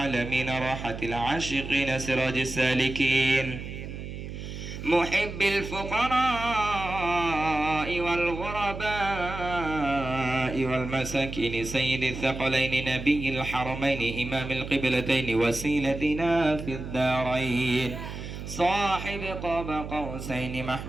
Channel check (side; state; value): right; noise; hum, 9 dB below the sound